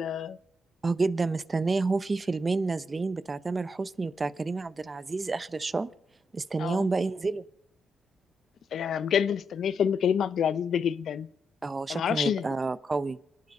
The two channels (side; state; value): both; normal; correlation 0.81